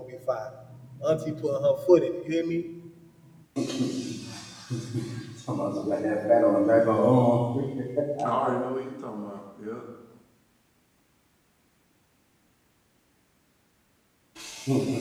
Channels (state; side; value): identical; both; correlation 1.00